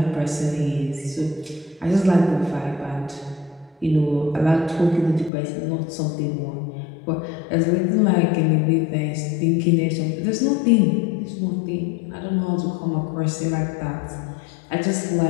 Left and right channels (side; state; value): right; drops out; at 5.3 s